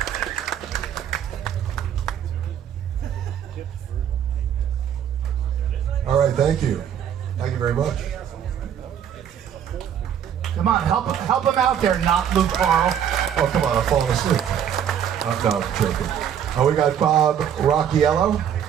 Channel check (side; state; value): left; quieter; 9.1 dB